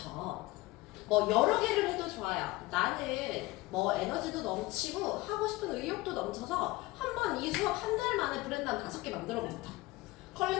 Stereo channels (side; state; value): right; quieter; 20.4 dB